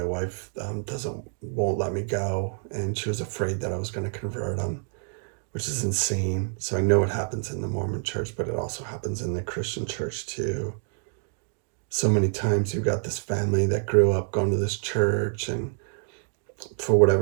wife won't let me go, and she was afraid that I was going to convert him, which is insane. So I know it happens in the Mormon church, but it also happens in the Christian church too. So many times you've got this family that grew up going to this church, and for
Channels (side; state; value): left; silent; 60 dB below the other